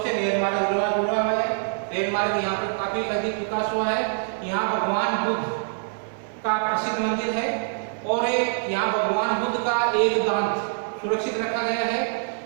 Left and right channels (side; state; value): left; silent; 60 dB below the other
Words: से रेल मार्ग जुड़ा हुआ है। रेल मार्ग यहाँ पर काफी अधिक विकास हुआ है। यहाँ भगवान बुद्ध का प्रसिद्ध मंदिर है और यहाँ भगवान बुद्ध का एक दांत सुरक्षित रखा गया है।